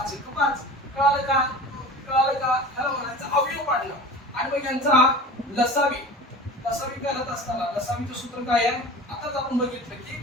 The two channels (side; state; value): both; normal; correlation 0.36